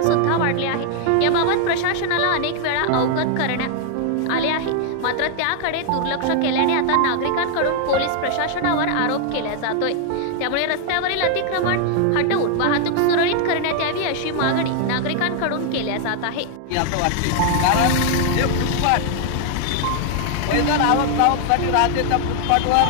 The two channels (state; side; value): different; both; correlation 0.00